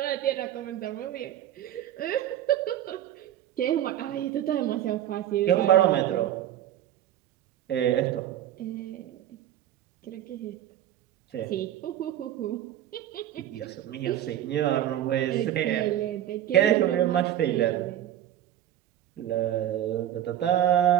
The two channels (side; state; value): left; quieter; 11.7 dB